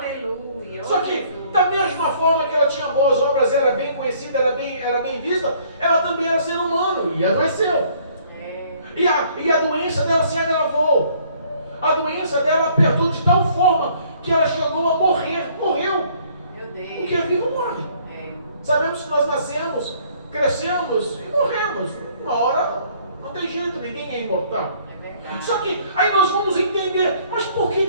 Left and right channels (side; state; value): both; inverted; correlation -0.60